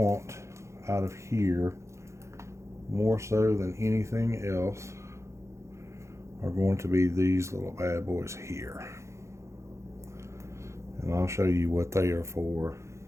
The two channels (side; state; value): left; late; 0.14 ms